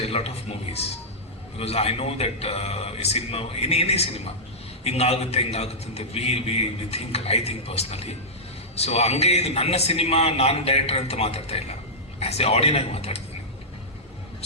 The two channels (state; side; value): normal; both; correlation -0.11